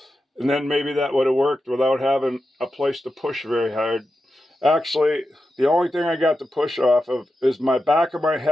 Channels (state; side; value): normal; both; correlation 0.90